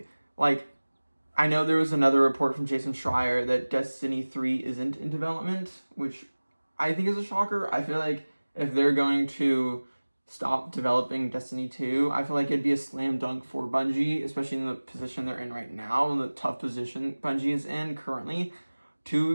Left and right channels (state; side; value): inverted; both; correlation -1.00